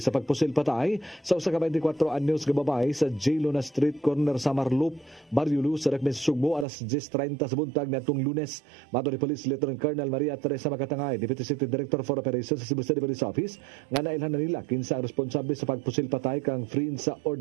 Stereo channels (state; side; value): drops out; left; at 6.7 s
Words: sa pagpusil patay sa usa ka 24 anyos nga babae sa J. Luna Street corner sa Marloop, Barrio Luz sa Dakbayan sa Sugbo alas 10:30 sa buntag niadtong Lunes. Mato ni Police Lieutenant Colonel Maria Teresa Macatangay, Deputy City Director for Operations sa Cebu City Police Office, nga nailhan na nila kinsa ang responsable sa pagpusil patay kang Frin sa